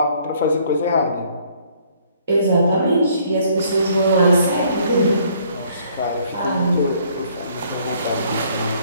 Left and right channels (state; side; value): inverted; both; correlation -0.63